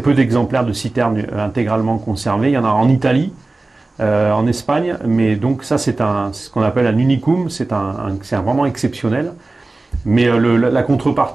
d'exemplaires de citernes intégralement conservées. Il y en a en Italie, en Espagne, mais donc ça c'est ce qu'on appelle un unicum, c'est vraiment exceptionnel. Mais la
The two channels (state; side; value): quieter; left; 3.2 dB